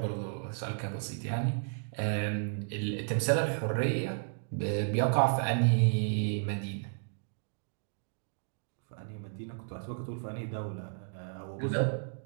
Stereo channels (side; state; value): left; silent; digital silence